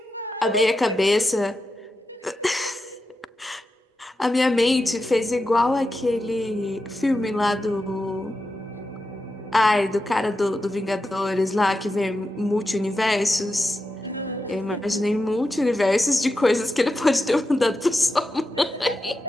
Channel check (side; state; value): both; normal; correlation 0.89